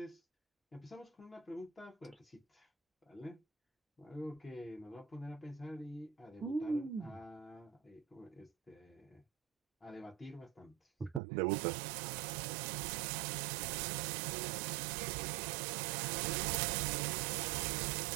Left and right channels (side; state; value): left; drops out; at 11.2 s